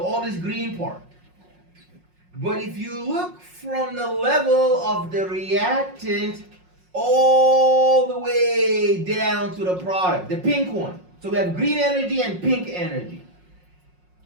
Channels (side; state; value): left; late; 5.5 ms